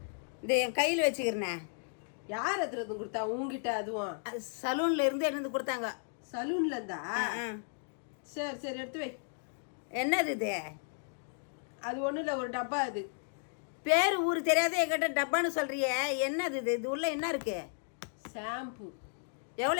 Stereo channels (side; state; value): right; silent; digital silence